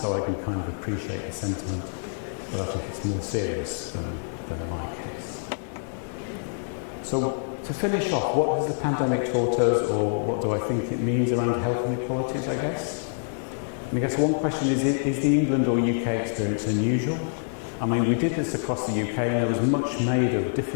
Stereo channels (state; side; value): silent; right; digital silence